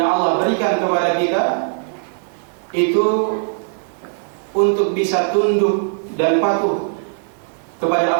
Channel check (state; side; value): silent; left; digital silence